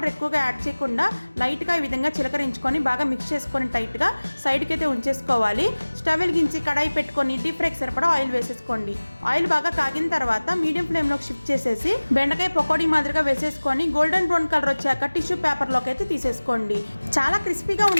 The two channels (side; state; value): both; inverted; correlation -1.00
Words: ఎక్కువగా యాడ్ చేయకుండా లైట్గా ఈ విధంగా చిలకరించుకొని బాగా మిక్స్ చేసుకొని టైట్గా సైడ్కి అయితే ఉంచేసుకోవాలి. స్టవ్ వెలిగించి కడాయి పెట్టుకొని డీప్ ఫ్రైకి సరిపడా ఆయిల్ వేసేసుకోండి. ఆయిల్ బాగా కాగిన తర్వాత మీడియం ఫ్లేమ్లోకి షిఫ్ట్ చేసేసి బెండకాయ పకోడీ మాదిరిగా వేసేసుకొని గోల్డెన్ బ్రౌన్ కలర్ వచ్చాక టిష్యూ పేపర్లోకి అయితే తీసేసుకోండి. చాలా క్రిస్పీగా